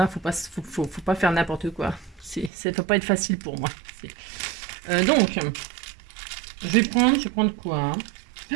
faut pas faire n'importe quoi. Ça ne peut pas être facile pour moi. Donc, je vais prendre quoi hein.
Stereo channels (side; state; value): left; drops out; at 2.5 s